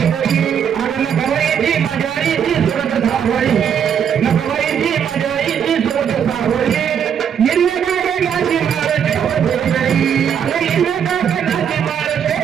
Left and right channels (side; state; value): left; quieter; 8.1 dB